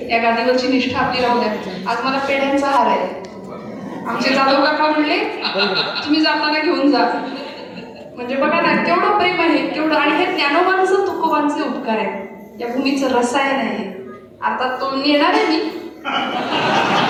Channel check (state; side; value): identical; both; correlation 1.00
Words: या गादीवरची निष्ठा आपली राहू द्या. आज मला पेढ्यांचा हार आहे. आमचे जाधव काका म्हणले तुम्ही जाताना घेऊन जा. म्हणजे बघा ना केवढं प्रेम आहे, केवढं. आणि हे ज्ञानोबांचं तुकोबांचे उपकार आहेत, या भूमीचं रसायन आहे. आता तो नेणार आहे मी.